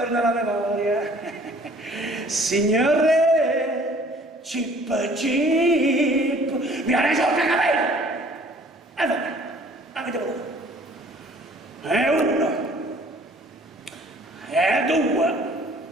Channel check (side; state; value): both; normal; correlation 0.54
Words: la memoria. Signore, Chip, mi ha dai soldi, capito? E vabbè, avete voluto. E uno, e due,